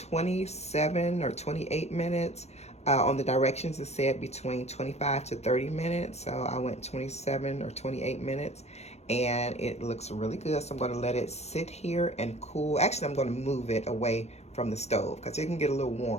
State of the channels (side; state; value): right; late; 0.31 ms